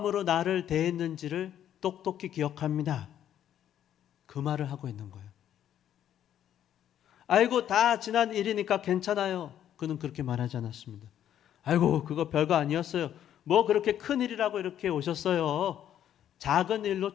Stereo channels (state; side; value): quieter; right; 10.6 dB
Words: 나를 대했는지를 똑똑히 기억합니다. 그 말을 하고 있는 거예요. 아이고 다 지난 일이니까 괜찮아요. 그는 그렇게 말하지 않았습니다. 아이고 그거 별거 아니었어요. 뭐 그렇게 큰 일이라고 이렇게 오셨어요. 작은 일로